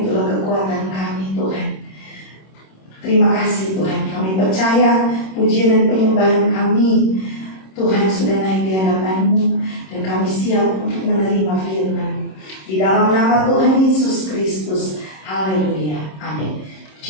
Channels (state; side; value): late; right; 26 ms